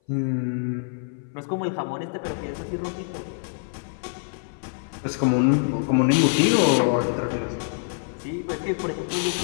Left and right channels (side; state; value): right; silent; 57 dB below the other